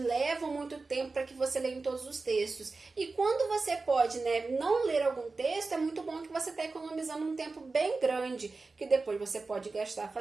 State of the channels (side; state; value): left; quieter; 3.9 dB